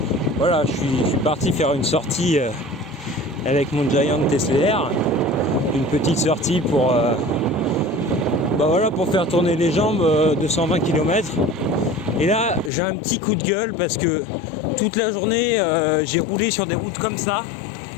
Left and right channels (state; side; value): drops out; right; at 12.7 s